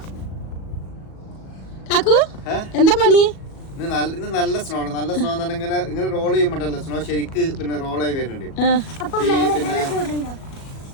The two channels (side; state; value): right; late; 37 ms